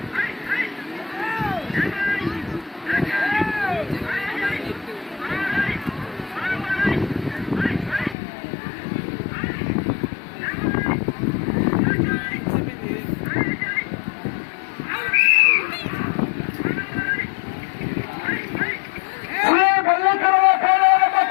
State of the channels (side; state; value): right; drops out; at 8.2 s